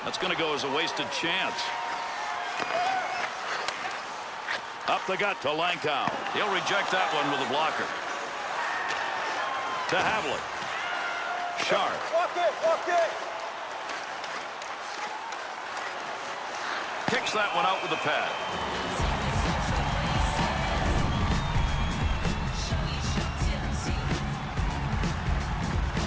That's going to go as a wasted chance. Up the gut to Lankow. He'll reject that one with a blocker. To Havlik. Sharp. Walk it. Kicks that one out with the pad.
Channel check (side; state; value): both; identical; correlation 1.00